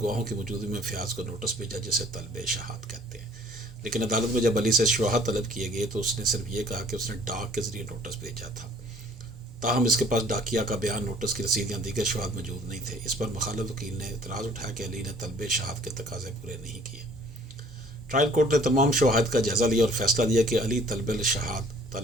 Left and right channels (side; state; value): both; normal; correlation 0.55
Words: की मौजूदगी में फ़याज़ को नोटिस भेजा, जिसे तलब शहाद कहते हैं। लेकिन अदालत में जब अली से शवाहद तलब किए गए तो उसने सिर्फ ये कहा कि उसने डाक के ज़रिए नोटिस भेजा था। ताहम इसके पास डाकिया का बयान, नोटिस की रसीद या दीगर शवाहद मौजूद नहीं थे। इस पर मुखालिफ वकील ने इतराज़ उठाया कि अली ने तलब शहाद के तकाज़े पूरे नहीं किए। ट्रायल कोर्ट ने तमाम शवाहद का जायज़ा लिया और फैसला दिया कि अली तलब